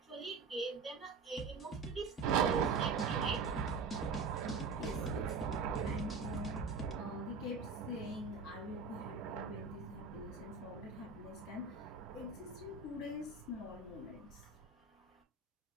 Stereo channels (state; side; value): quieter; left; 4.7 dB